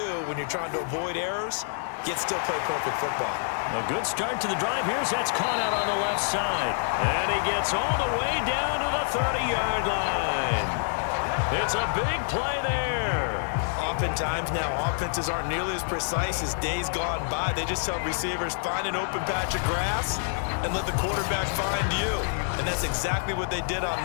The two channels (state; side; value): silent; right; 56 dB below the other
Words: when you're trying to avoid errors, yet still play perfect football. A good start to the drive. Here's that's caught out on the left side. And he gets all the way down to the 30-yard line. It's a big play there. Oftentimes now, offenses aren't nearly as precise as days gone by. They just tell receivers, find an open patch of grass and let the quarterback find you. And that's exactly what they did on